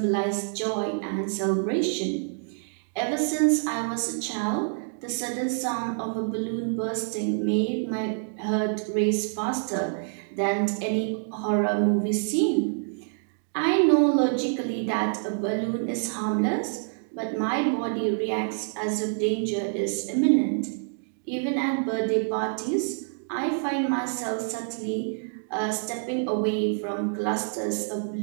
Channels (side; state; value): left; silent; digital silence